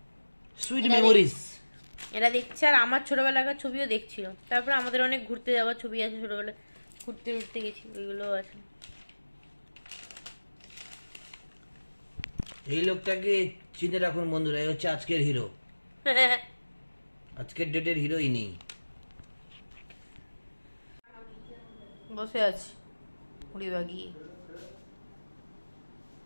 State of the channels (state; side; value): inverted; both; correlation -1.00